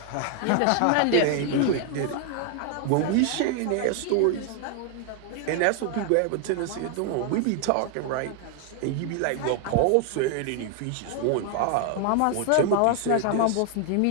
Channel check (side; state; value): both; different; correlation 0.00